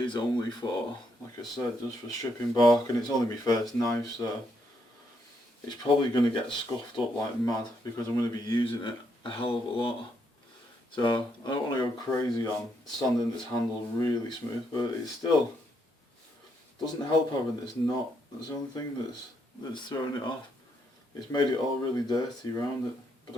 only for, like I said, just for stripping bark, and it's only my first knife, so it's probably going to get scuffed up like mad because I'm going to be using it a hell of a lot. So I don't want to go crazy on sanding this handle really smooth, but it still doesn't help having this knot. That's the only thing that's throwing it off. It's made it all really dirty around it, but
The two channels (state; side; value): normal; both; correlation 0.76